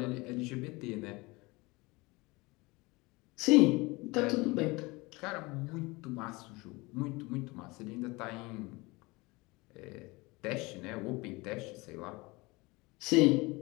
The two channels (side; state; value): right; quieter; 23.8 dB